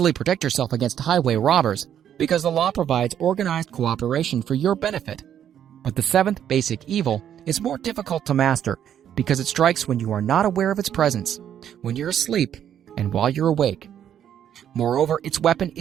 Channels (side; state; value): left; quieter; 9.8 dB